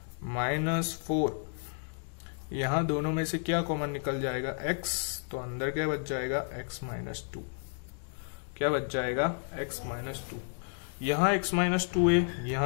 -4। यहां दोनों में से क्या कॉमन निकल जाएगा, x। तो अंदर क्या बच जाएगा, x - 2। क्या बच जाएगा, x - 2। यहाँ x - 2 है,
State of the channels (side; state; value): right; silent; digital silence